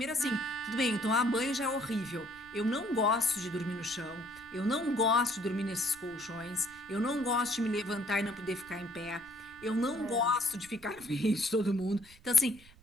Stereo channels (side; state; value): right; noise; rumble, 23 dB below the sound